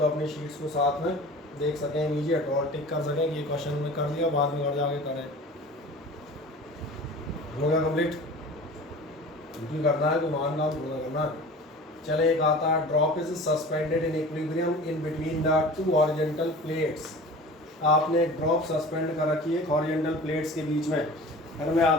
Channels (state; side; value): normal; both; correlation 0.40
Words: अपनी शीट्स को साथ में देख सकें इमीडिएट और टिक कर सकें कि ये क्वेश्चन में कर दिया, बाद में घर जाके करें। हो गया कंप्लीट? क्योंकि करना है तो मान काम पूरा करना है। चले एक आता है drop is suspended in equilibrium in between the 2 horizontal plates. आपने ड्रॉप सस्पेंड कर रखी है हॉरिजॉन्टल प्लेट्स के बीच में। फिर मैं याद